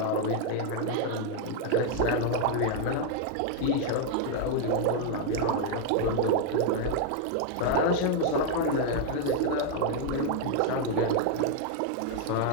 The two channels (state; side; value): different; both; correlation 0.00